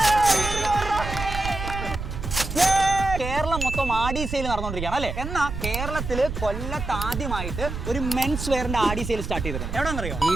കേരളം മൊത്തം ആഡി സെയിൽ നടന്നുകൊണ്ടിരിക്കുകയാണ് അല്ലേ? എന്നാൽ കേരളത്തിൽ കൊല്ലത്ത് ആദ്യമായിട്ട് ഒരു മെൻസ് വെയറിന്റെ ആഡി സെയിൽ സ്റ്റാർട്ട് ചെയ്തിട്ടുണ്ട്. എവിടെയാണെന്നറിയോ?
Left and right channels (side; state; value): right; noise; rumble, 6 dB below the sound